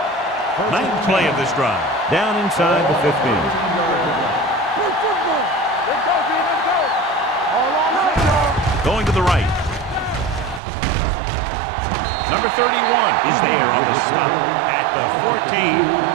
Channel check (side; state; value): left; drops out; at 10.6 s